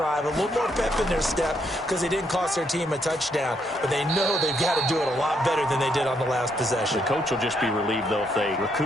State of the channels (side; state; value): both; normal; correlation 0.74